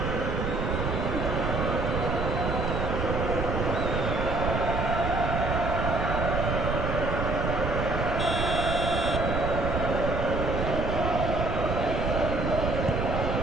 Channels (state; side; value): noise; right; rumble, 1 dB below the sound